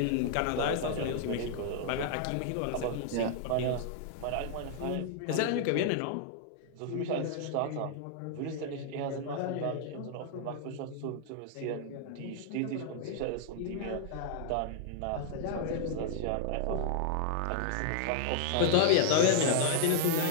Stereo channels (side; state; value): both; different; correlation -0.01